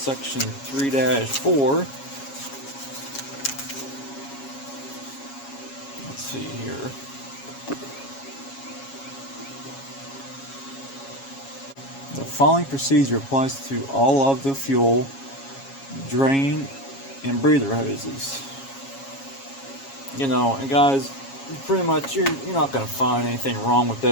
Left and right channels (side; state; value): right; late; 7.3 ms